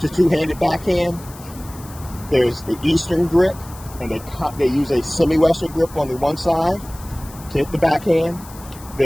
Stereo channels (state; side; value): noise; left; hiss, 19 dB below the sound